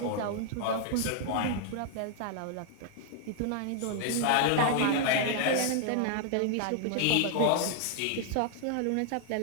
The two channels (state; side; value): different; both; correlation 0.00